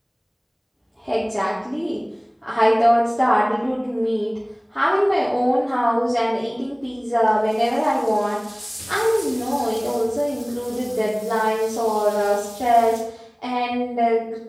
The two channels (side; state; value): both; identical; correlation 1.00